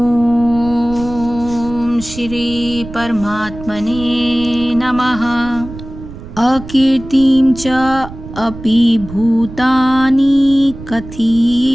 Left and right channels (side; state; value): right; noise; rumble, 14 dB below the sound